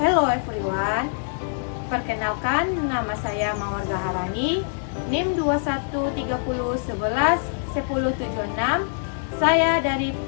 everyone. Perkenalkan, nama saya Mawar Gaharani, NIM 2130111076. Saya dari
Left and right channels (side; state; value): right; silent; digital silence